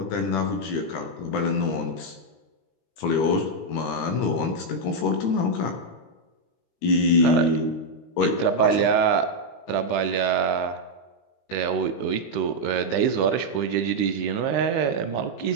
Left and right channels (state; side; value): late; right; 17 ms